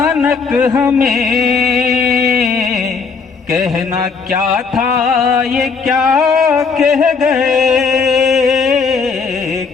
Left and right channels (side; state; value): right; quieter; 5.1 dB